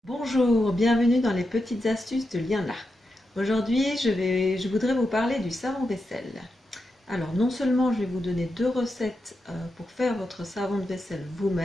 Bonjour, bienvenue dans les petites astuces de Liana. Aujourd'hui, je voudrais vous parler du savon vaisselle. Alors, non seulement je vais vous donner deux recettes pour faire votre savon de vaisselle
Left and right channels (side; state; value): both; normal; correlation 0.87